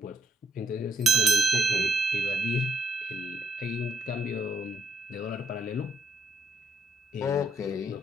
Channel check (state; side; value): normal; both; correlation 0.72